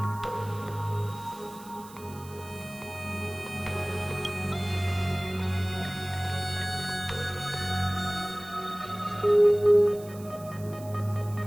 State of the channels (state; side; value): noise; right; hiss, 20 dB below the sound